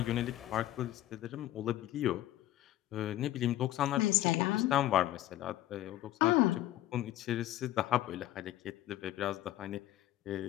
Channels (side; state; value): right; quieter; 14.3 dB